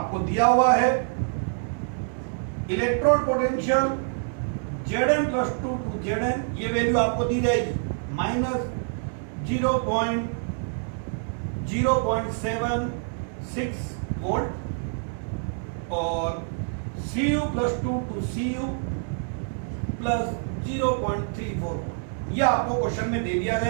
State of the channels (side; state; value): left; silent; 57 dB below the other